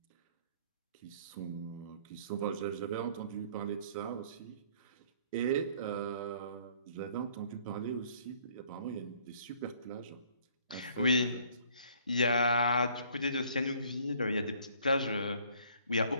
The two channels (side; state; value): both; inverted; correlation -0.59